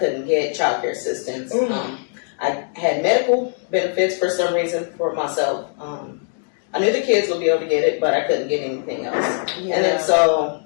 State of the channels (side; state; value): right; silent; 61 dB below the other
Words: get child care assistance. I had medical benefits for some reason for myself. I knew the kids would be able to get it, but I couldn't get anything else. And then so,